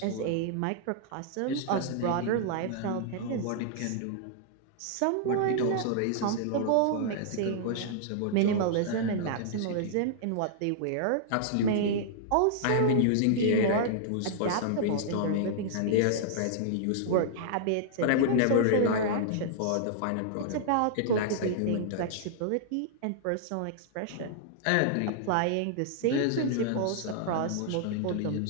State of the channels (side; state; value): both; different; correlation -0.01